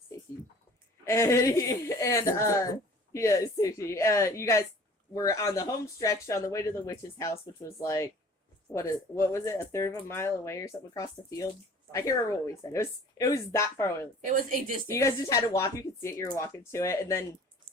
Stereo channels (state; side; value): normal; both; correlation 0.48